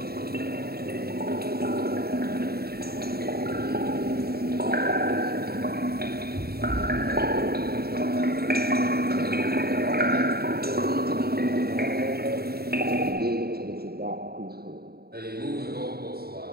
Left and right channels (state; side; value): late; left; 0.45 ms